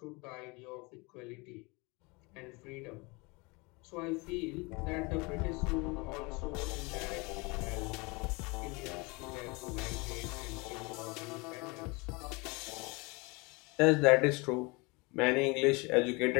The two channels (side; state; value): right; quieter; 27.1 dB